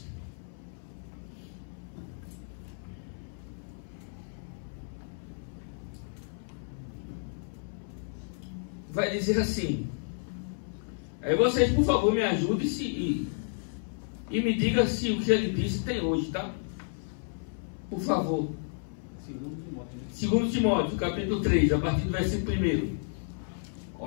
vai dizer assim, Aí vocês, por favor, me ajudem e me digam se o que ele disse tem hoje, tá? Por favor. 2 Timóteo, capítulo 3, a partir do versículo 1.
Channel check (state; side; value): silent; right; 57 dB below the other